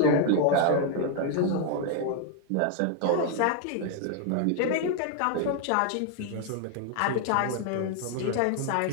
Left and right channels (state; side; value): different; both; correlation 0.00